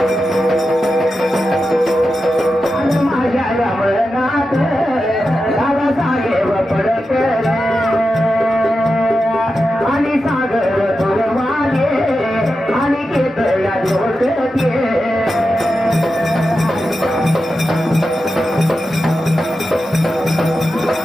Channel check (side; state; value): both; normal; correlation 0.90